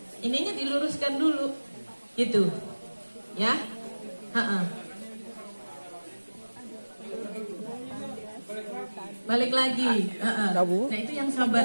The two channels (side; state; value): both; inverted; correlation -1.00